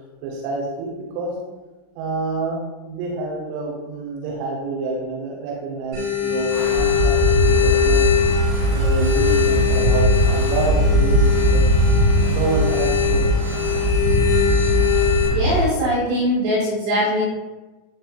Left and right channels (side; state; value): left; late; 40 ms